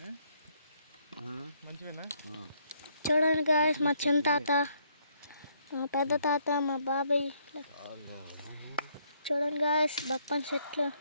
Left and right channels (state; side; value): inverted; both; correlation -0.70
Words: మంచివేనా? చూడండి గాయ్స్, మా చిన్న తాత, మా పెద్ద తాత, మా బాబాయ్. చూడండి గాయ్స్, బప్పన్ చెట్లు.